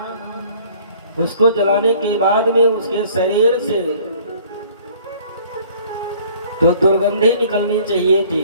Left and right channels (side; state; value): both; inverted; correlation -0.54